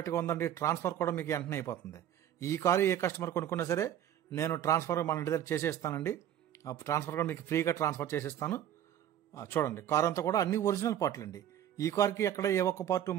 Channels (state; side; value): quieter; left; 10.9 dB